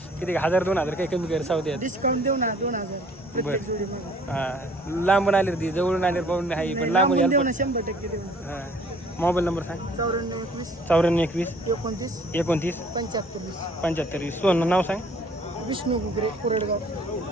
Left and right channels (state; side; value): normal; both; correlation 0.56